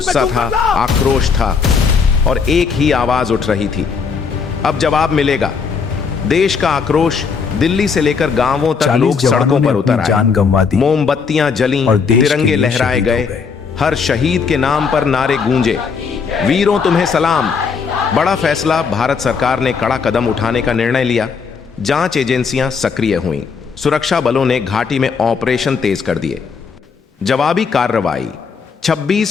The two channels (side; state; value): right; quieter; 5.6 dB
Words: था, आक्रोश था और एक ही आवाज उठ रही थी, अब जवाब मिलेगा। देश का आक्रोश। दिल्ली से लेकर गांवों तक लोग सड़कों पर उतर आए। मोमबत्तियां जलीं, तिरंगे लहराए गए। हर शहीद के नाम पर नारे गूंजे, वीरों तुम्हें सलाम। बड़ा फैसला। भारत सरकार ने कड़ा कदम उठाने का निर्णय लिया। जांच एजेंसियां सक्रिय हुईं। सुरक्षा बलों ने घाटी में ऑपरेशन तेज कर दिए। जवाबी कार्रवाई।